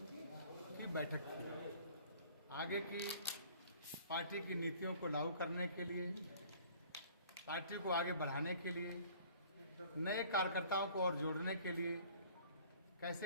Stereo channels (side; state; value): both; inverted; correlation -0.52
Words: की बैठक थी। आगे की पार्टी की नीतियों को लागू करने के लिए, पार्टी को आगे बढ़ाने के लिए, नए कार्यकर्ताओं को और जोड़ने के लिए कैसे